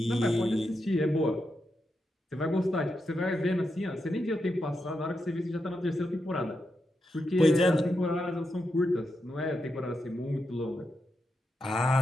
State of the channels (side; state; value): both; normal; correlation 0.86